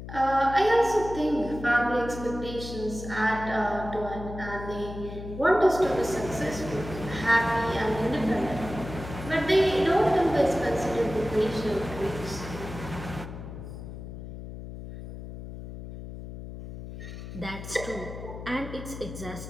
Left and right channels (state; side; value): noise; left; hum, 10 dB below the sound